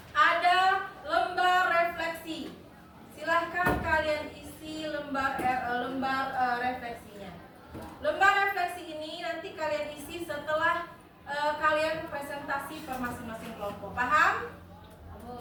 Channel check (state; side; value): identical; both; correlation 1.00